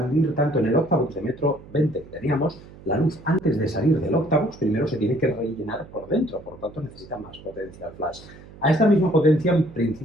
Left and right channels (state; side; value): noise; right; hum, 19 dB below the sound